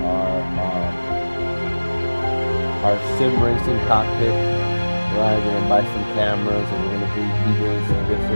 our sim racing cockpit. Right, we're gonna buy some cameras and we're gonna be doing some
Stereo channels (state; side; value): inverted; both; correlation -1.00